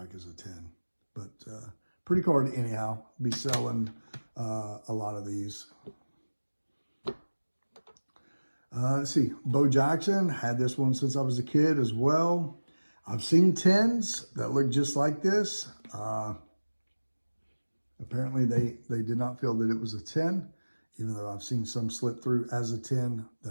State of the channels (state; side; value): inverted; both; correlation -1.00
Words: as a 10. But pretty card anyhow. Be selling a lot of these. Let's see, Bo Jackson, had this one since I was a kid as well. I've seen 10s that look just like this. Apparently they did not feel that it was a 10, even though I've seen some slip through as a 10